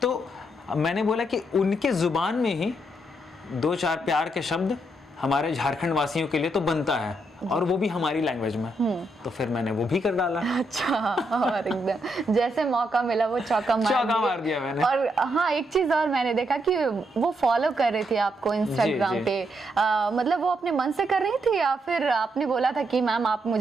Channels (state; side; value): normal; both; correlation 0.78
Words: तो मैंने बोला कि उनके जुबान में ही 2-4 प्यार के शब्द हमारे झारखंड वासियों के लिए तो बनता है, और वो भी हमारी लैंग्वेज में। तो फिर मैंने वो भी कर डाला। अच्छा। और एकदम जैसे मौका मिला वो चौका मार दिया मैंने। और हाँ, एक चीज और मैंने देखा कि वो फॉलो कर रही थी आपको इंस्टाग्राम पे। मतलब वो अपने मन से कर रही थी या फिर आपने बोला था कि मैम आप